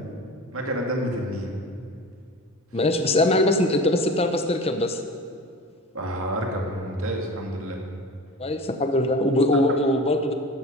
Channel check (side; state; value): both; normal; correlation 0.35